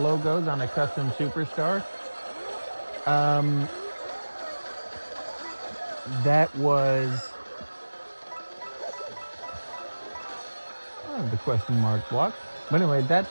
on a custom superstar, that was the question mark block. But anyway,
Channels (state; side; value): inverted; both; correlation -1.00